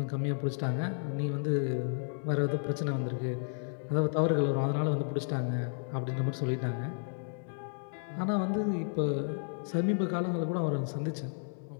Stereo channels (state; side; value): silent; right; digital silence